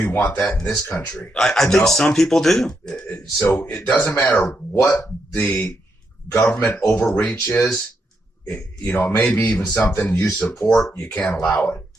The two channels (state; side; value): normal; both; correlation 0.81